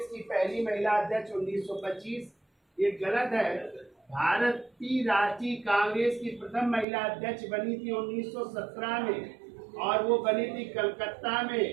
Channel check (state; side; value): drops out; left; at 6.9 s